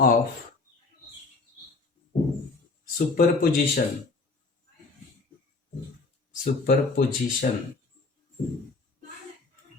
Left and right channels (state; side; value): quieter; right; 3.8 dB